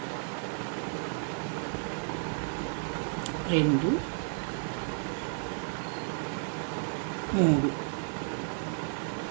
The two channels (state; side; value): silent; left; 56 dB below the other